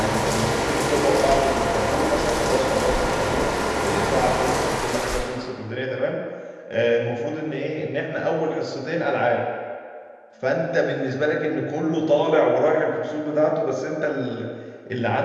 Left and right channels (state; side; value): identical; both; correlation 1.00